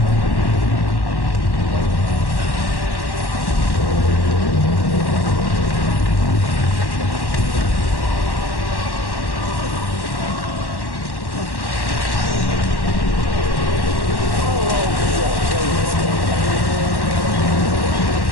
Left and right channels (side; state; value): right; late; 1.1 ms